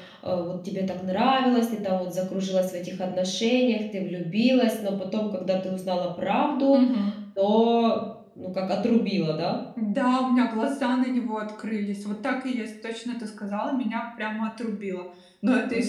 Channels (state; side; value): identical; both; correlation 1.00